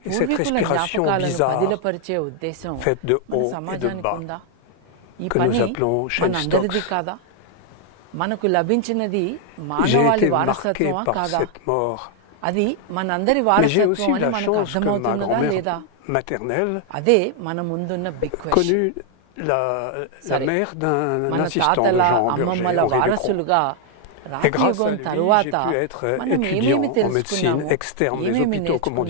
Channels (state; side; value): different; both; correlation 0.00